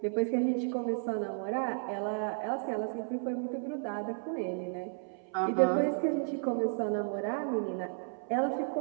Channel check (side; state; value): left; silent; 56 dB below the other